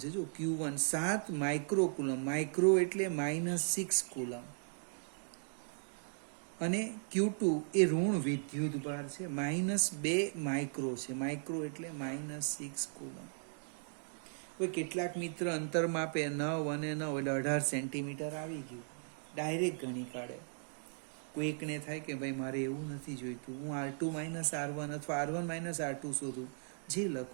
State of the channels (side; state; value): left; silent; digital silence